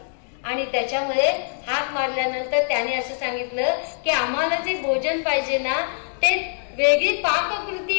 आणि त्याच्यामध्ये हाक मारल्यानंतर त्याने असं सांगितलं की आम्हाला जे भोजन पाहिजे ना ते वेगळी पाककृती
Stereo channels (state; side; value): silent; right; digital silence